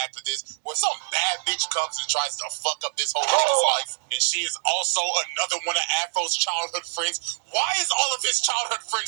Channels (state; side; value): silent; left; digital silence